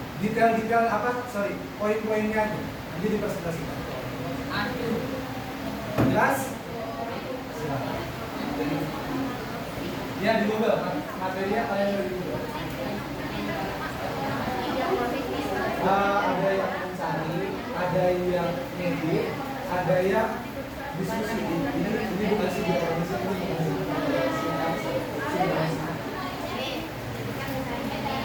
Detail-detail apa? Sorry, poin-poinnya aja. Nanti dipresentasikan. Jelas? Silakan. Ya, di Google. Materinya kalian ada di Google. Ada yang mencari, ada yang ngedit, ada yang diskusi. Ini bukan sinkronisasi, ini bukan sinkronisasi.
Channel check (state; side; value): identical; both; correlation 1.00